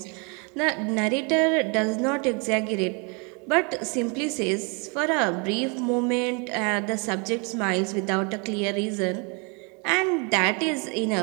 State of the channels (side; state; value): left; quieter; 33.5 dB